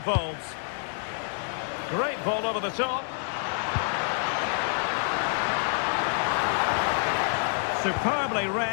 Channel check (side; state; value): right; silent; 57 dB below the other